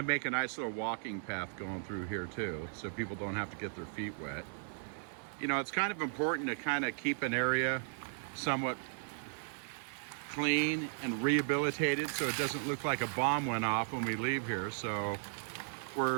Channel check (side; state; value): left; silent; digital silence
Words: make a nice little walking path going through here too, so people don't have to get their feet wet. You know, it's kind of important to kind of keep an area somewhat clean and rehabilitated so it doesn't look like a bomb went off when we leave here. So